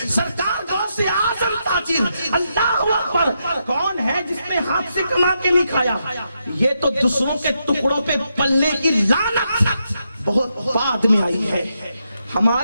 سرکار غوث اعظم تاجر، اللہ اکبر، کون ہے جس نے ہاتھ سے کما کے نہیں کھایا؟ یہ تو دوسروں کے ٹکڑوں پہ پلنے کی لعنت بہت بعد میں آئی ہے۔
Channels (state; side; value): inverted; both; correlation -0.82